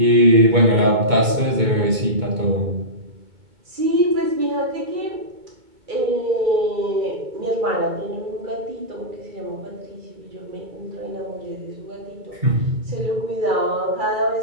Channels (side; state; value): left; late; 2.2 ms